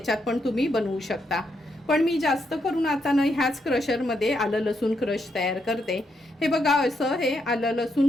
पण तुम्ही बनवू शकता. पण मी जास्त करून आता ना ह्याच क्रशरमध्ये आलं लसूण क्रश तयार करते. हे बघा, असं हे आलं लसूण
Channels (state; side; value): normal; both; correlation 0.79